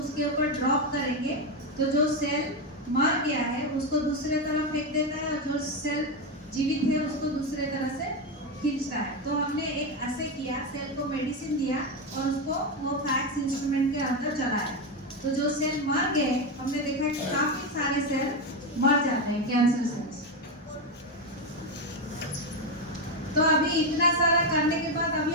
ऊपर ड्रॉप करेंगे तो जो सेल मर गया है उसको दूसरे तरफ फेंक देता है और जो सेल जीवित है उसको दूसरे तरह से खींचता है। तो हमने एक ऐसे किया, सेल को मेडिसिन दिया और उसको वो फैक्स इंस्ट्रूमेंट के अंदर चलाया। तो जो सेल मर गए, हमने देखा कि काफी सारे सेल मर जाते हैं, कैंसर सेल्स। तो अभी इतना सारा करने के बाद अभी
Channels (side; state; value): both; normal; correlation 0.11